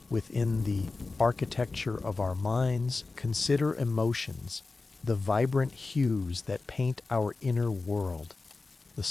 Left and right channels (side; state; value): right; quieter; 3.7 dB